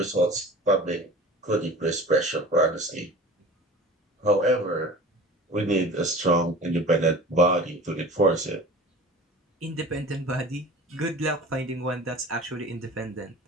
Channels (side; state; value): both; normal; correlation 0.40